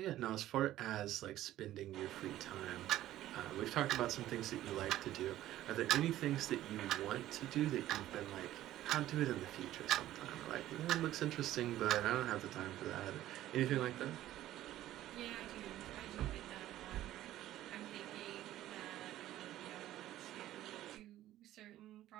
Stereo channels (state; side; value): quieter; left; 13.9 dB